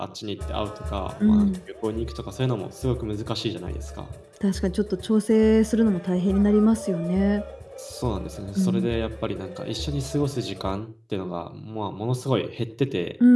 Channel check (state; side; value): identical; both; correlation 1.00